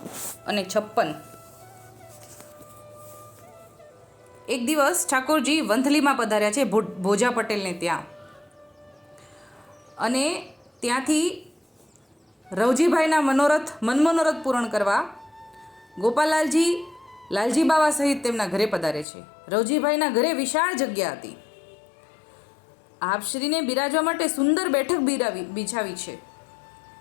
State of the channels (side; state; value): right; drops out; at 19.1 s